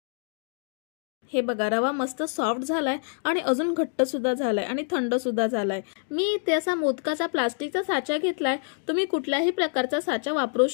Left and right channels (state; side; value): silent; right; 61 dB below the other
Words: हे बघा रवा मस्त सॉफ्ट झालाय आणि अजून घट्ट सुद्धा झालाय आणि थंड सुद्धा झालाय। मी इथे असा मोदकाचा प्लास्टिकचा साचा घेतलाय, तुम्ही कुठल्याही प्रकारचा साचा वापरू